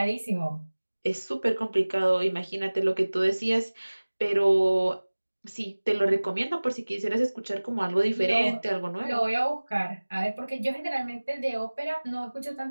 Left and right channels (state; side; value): inverted; both; correlation -1.00